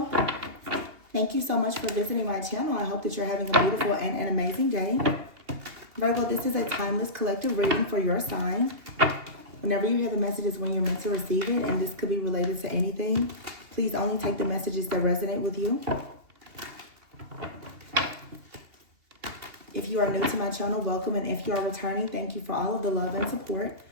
thank you so much for visiting my channel. I hope that you're having a beautiful and an amazing day. Virgo, this is a timeless collective reading for your sign. Whenever you hear the messages when you're meant to receive it, and this could be related to anything, please only take the messages that resonate with you. If you are new to my channel, welcome, and if you are returning, thank you for all of the love and support.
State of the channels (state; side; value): late; left; 2.8 ms